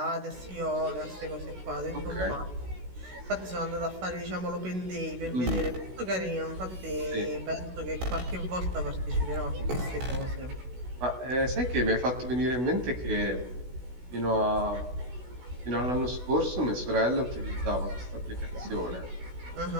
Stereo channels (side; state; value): left; late; 16 ms